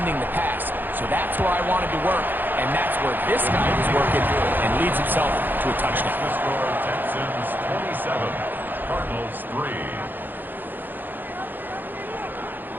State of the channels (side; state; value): left; late; 0.091 ms